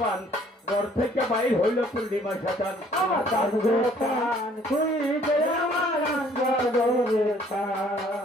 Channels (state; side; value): normal; both; correlation 0.59